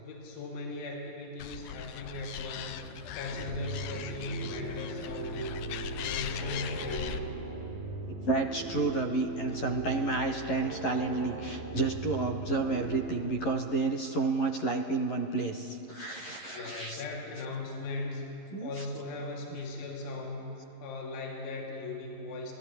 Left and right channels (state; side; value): late; right; 11 ms